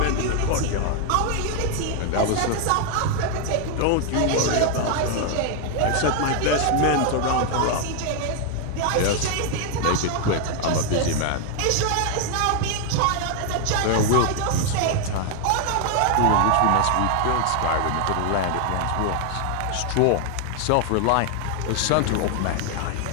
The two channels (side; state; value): both; different; correlation 0.00